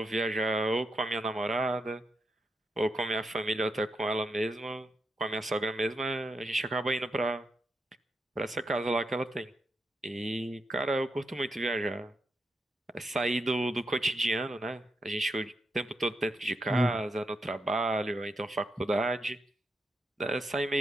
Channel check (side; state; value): both; normal; correlation 0.84